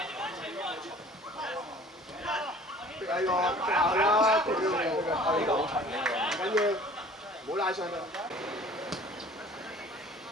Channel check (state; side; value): normal; both; correlation 0.48